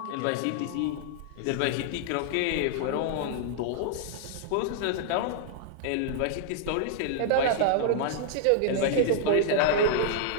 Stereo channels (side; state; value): both; different; correlation -0.01